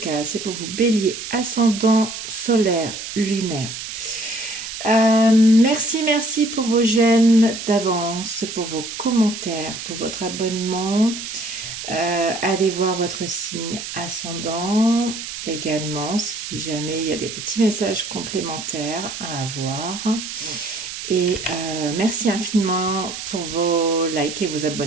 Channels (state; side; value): noise; right; hiss, 8 dB below the sound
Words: c'est pour vous bélier, ascendant, solaire, lunaire. Merci pour vos j'aime d'avance, pour vos commentaires, pour votre abonnement. Allez voir votre signe ascendant également si jamais il y a des petits messages complémentaires à avoir. Et merci infiniment pour vos likes et vos